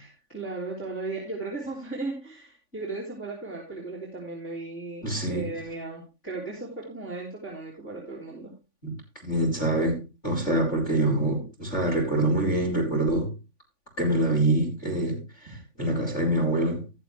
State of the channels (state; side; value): late; right; 3.5 ms